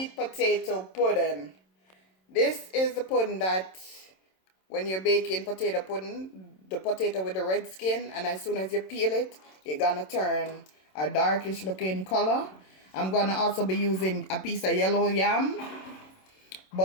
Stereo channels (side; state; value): right; late; 27 ms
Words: potato pudding. This is the pudding that when you're baking potato pudding, the potato with the red skin, and as soon as you peel it, it's gonna turn a darkish looking color. I'm gonna also be using a piece of yellow yam,